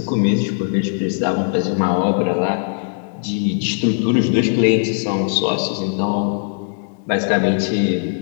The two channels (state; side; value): silent; right; digital silence